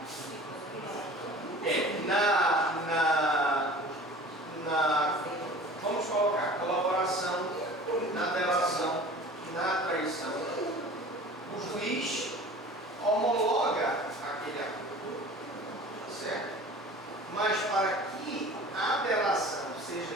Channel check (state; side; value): normal; both; correlation 0.42